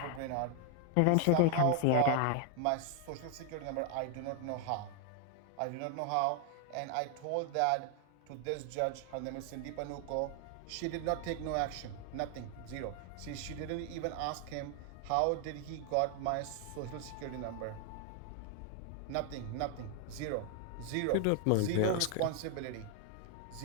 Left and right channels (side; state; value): both; different; correlation 0.00